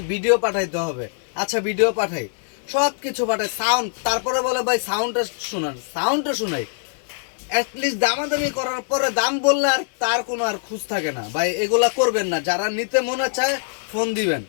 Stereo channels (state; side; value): silent; right; digital silence